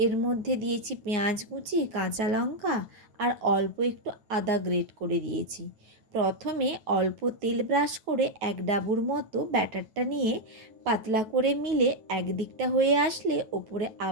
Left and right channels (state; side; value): late; left; 9.2 ms